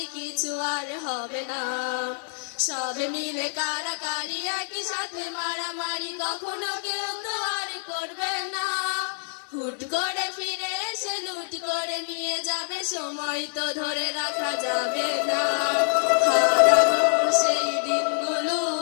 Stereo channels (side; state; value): right; silent; digital silence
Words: কিছু আর হবে না। সবে মিলে কারাকারি, একই সাথে মারামারি, কখনো কেউ তো আর করবে না। হুট করে ফিরে এসে লুট করে নিয়ে যাবে, সময় তো ধরে রাখা যাবে না। হারানো সেই দিনগুলো